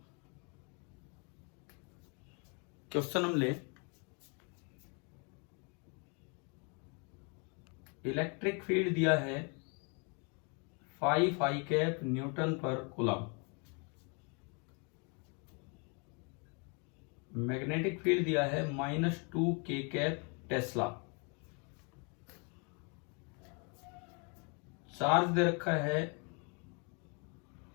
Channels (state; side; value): quieter; right; 34.8 dB